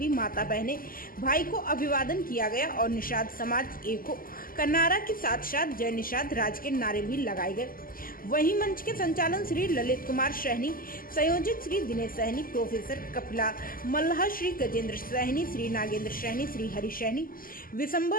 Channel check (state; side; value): late; right; 0.41 ms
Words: माता बहने भाई को अभिवादन किया गया और निषाद समाज एको का नारा के साथ साथ जय निषाद राज के नारे भी लगाए गए। वहीं मंच के संचालन श्री ललित कुमार सहनी, संयोजक श्री दिनेश सहनी, प्रोफेसर कपिला मल्लाह, श्री गजेंद्र सहनी, श्री नागेंद्र सहनी, श्री हरि सहनी, विशंबर